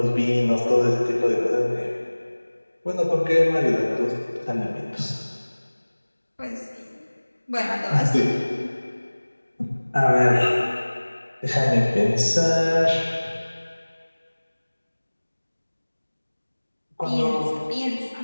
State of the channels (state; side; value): inverted; both; correlation -1.00